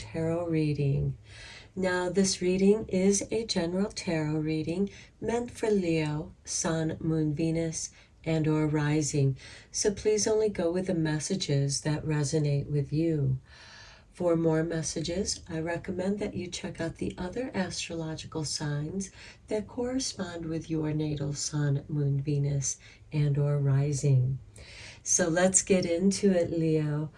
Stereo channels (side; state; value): both; identical; correlation 1.00